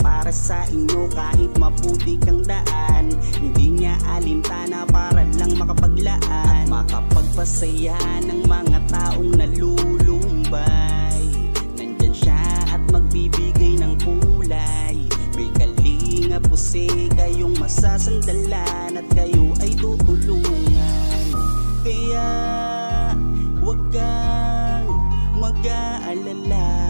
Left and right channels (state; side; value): inverted; both; correlation -1.00